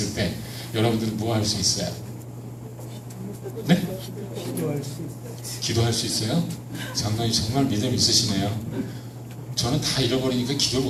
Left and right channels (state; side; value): identical; both; correlation 1.00